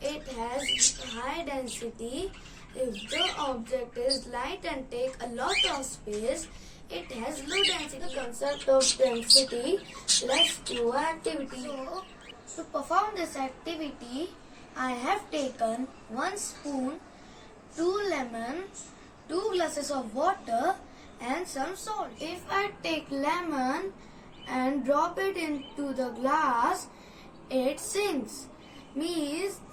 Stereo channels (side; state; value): both; identical; correlation 1.00